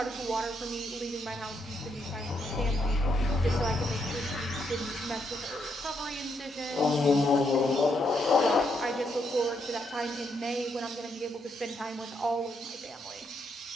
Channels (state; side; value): normal; both; correlation 0.77